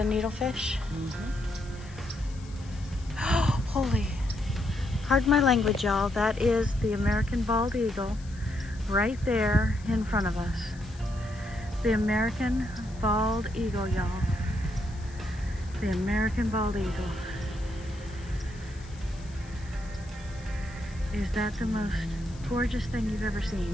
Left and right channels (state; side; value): noise; left; hiss, 23 dB below the sound